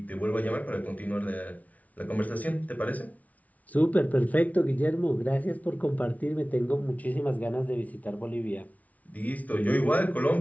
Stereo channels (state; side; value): late; right; 0.071 ms